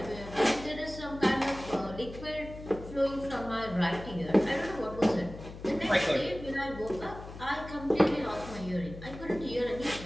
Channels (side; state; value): left; noise; hum, 13 dB below the sound